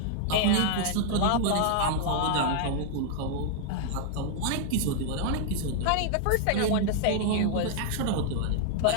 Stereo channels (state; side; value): different; both; correlation -0.01